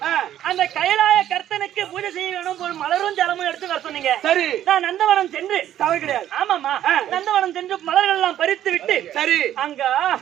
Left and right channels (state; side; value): quieter; left; 11.7 dB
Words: அந்த கைலாய கர்த்தனுக்கு பூஜை செய்ய வேணும் ஒரு மலரும் ஜலமும் எடுத்து வர சொன்னீங்க. சரி நான் நந்தவனம் சென்று தவறு கிடையாது. ஆமாமா நந்தவனம் சென்று மலர்கள் எல்லாம் பறித்து விட்டு சரி அங்க